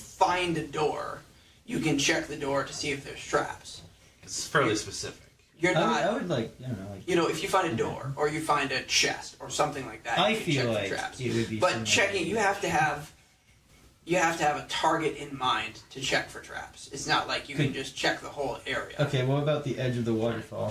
a door, you can check the door to see if there's traps. It's fairly specific. You're not. I would like, I don't know, like. You know, if you find a door or you find a chest or something like that, I you can feel check like for traps. it would be. But similar checking, to- you have to have a target in mind to check for traps. It's not like you can just check the whole area. Okay, what about the edge of the waterfall?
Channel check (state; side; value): identical; both; correlation 1.00